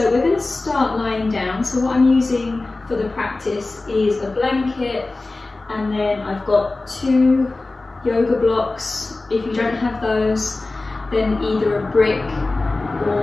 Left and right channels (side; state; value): right; quieter; 3.2 dB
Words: we're going to start lying down. So what I'm using for the practice is a blanket, and then I've got 2 yoga blocks. If you don't have those, then either a brick